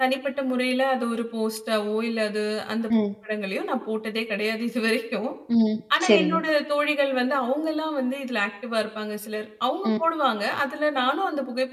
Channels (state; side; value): identical; both; correlation 1.00